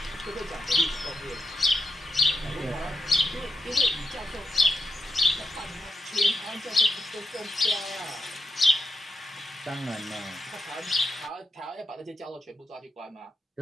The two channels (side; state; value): both; normal; correlation 0.85